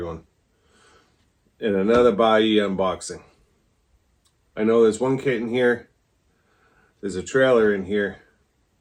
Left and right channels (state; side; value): identical; both; correlation 1.00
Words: And another Buyee unboxing. I know there's one kit in here. There's a trailer in here.